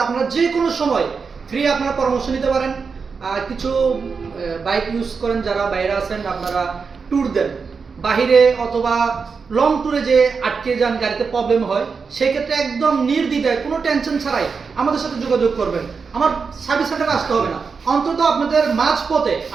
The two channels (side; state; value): left; quieter; 5.3 dB